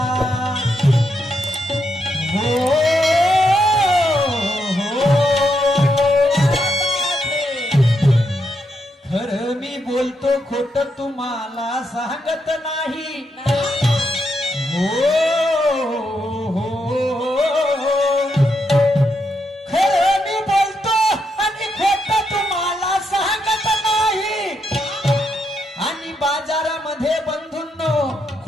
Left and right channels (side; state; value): both; normal; correlation 0.81